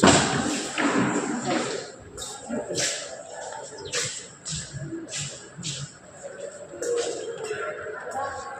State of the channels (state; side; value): identical; both; correlation 1.00